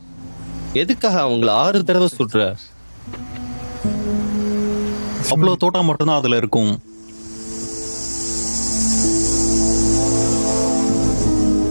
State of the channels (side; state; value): both; inverted; correlation -1.00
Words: எதுக்காக அவங்கள 6 தடவை சுடுற? அவ்வளவு தோட்டா மட்டும்தான் அதுல இருக்கும்.